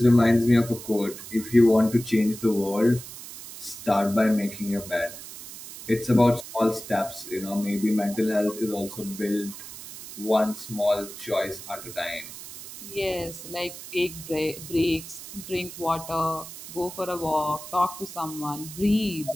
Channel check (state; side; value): noise; right; hiss, 13 dB below the sound